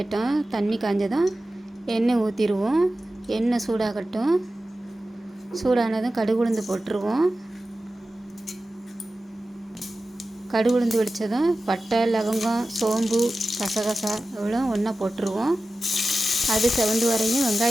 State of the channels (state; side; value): normal; both; correlation 0.94